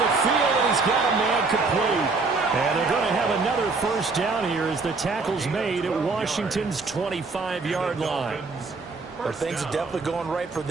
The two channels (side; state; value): left; quieter; 4.0 dB